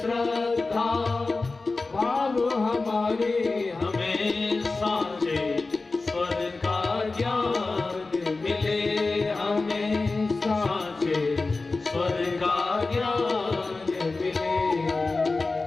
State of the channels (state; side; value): quieter; right; 3.6 dB